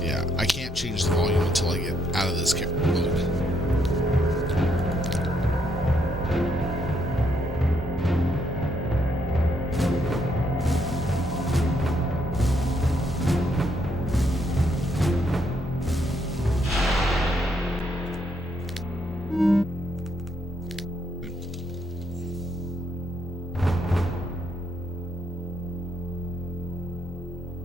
Yeah, I can't change the volume until I get out of this mode.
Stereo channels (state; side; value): normal; both; correlation 0.74